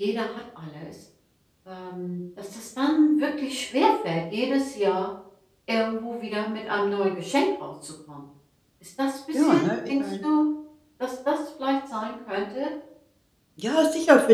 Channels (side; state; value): both; identical; correlation 1.00